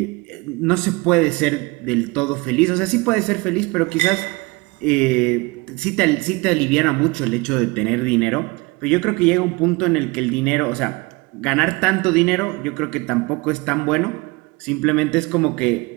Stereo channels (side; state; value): left; quieter; 25.1 dB